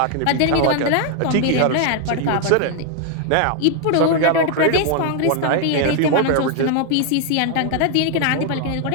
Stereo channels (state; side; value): different; both; correlation 0.00